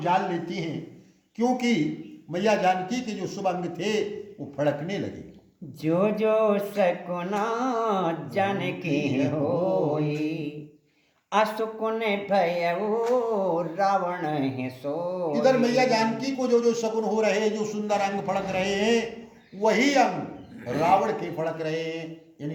जान लेती हैं क्योंकि मैया जानकी के जो शुभ अंग थे वो फड़कने लगे। जो जो सकुना जानकी होई, असुकुन भयउ रावण है सोई। इधर मैया जानकी को जो जो शकुन हो रहे हैं, जो सुंदर अंग फड़क रहे हैं, वही अंग रावण के फड़क रहे हैं।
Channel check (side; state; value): both; identical; correlation 1.00